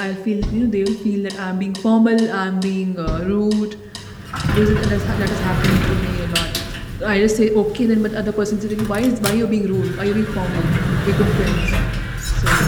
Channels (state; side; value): identical; both; correlation 1.00